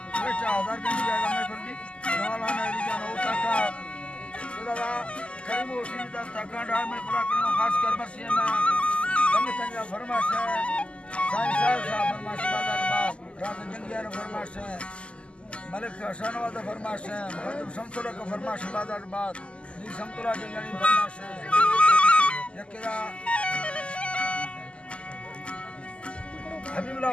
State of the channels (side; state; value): right; late; 0.054 ms